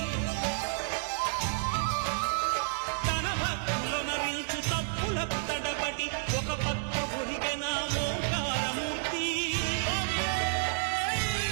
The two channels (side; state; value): left; silent; 55 dB below the other